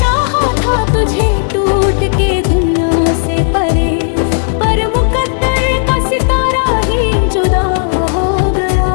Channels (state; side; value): silent; right; digital silence